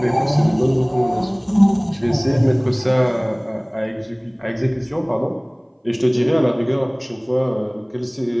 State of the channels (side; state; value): both; identical; correlation 1.00